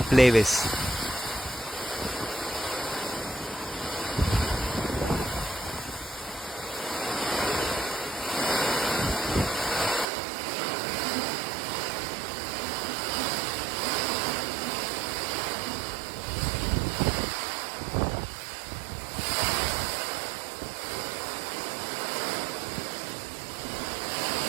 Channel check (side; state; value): left; drops out; at 10.1 s